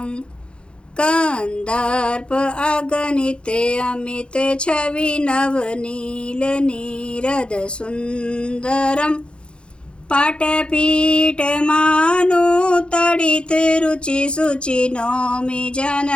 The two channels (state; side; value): late; right; 0.055 ms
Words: कंदर्प अगणित अमित छवि नवनील नीरद सुंदरम, पाटपीठ मानु तडित रुचि सुचि नौमि